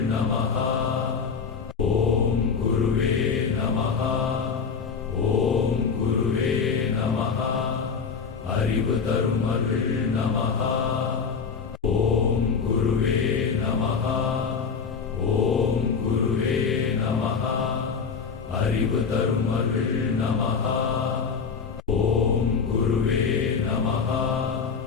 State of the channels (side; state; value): right; quieter; 5.7 dB